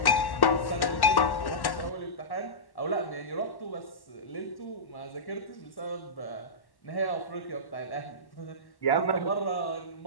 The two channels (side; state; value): right; late; 1.1 ms